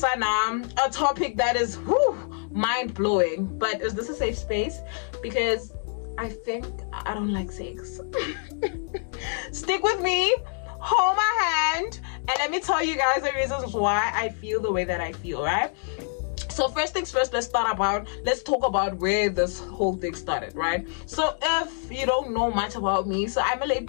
a topic that is mind-blowing. But is this a safe space? Because I think I don't like sex. Stick with me, hold my hand, and let me tell you guys the reasons why I feel the way that I feel, right? So first things first, let's talk about where this whole thing started, right? So if you don't know much about me, so I'm a late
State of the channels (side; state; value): right; silent; 61 dB below the other